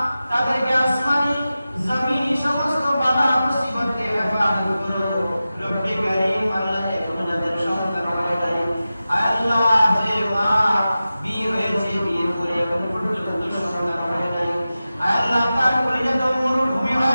তাদেরকে আসমানি জমিনি সমস্ত বালা মুসিবত থেকে হেফাজত করো। রব্বে কারীম আল্লাহ এখনো যাদের সন্তান হয় নাই, আল্লাহ যে মা বিয়ে হয়েছে, বিয়ে করে এখন পর্যন্ত সন্তান হয় নাই, আল্লাহ তার কলিজা তো মরুভূমি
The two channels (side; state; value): both; inverted; correlation -0.94